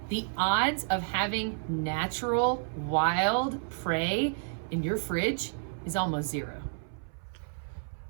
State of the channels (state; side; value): silent; left; 57 dB below the other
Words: the odds of having natural, wild prey in your fridge is almost zero.